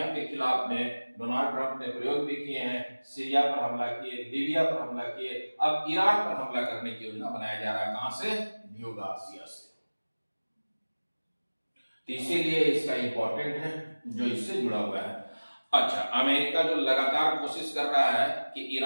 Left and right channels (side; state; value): both; inverted; correlation -1.00